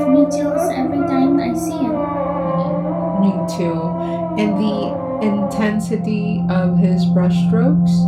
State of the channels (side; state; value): both; identical; correlation 1.00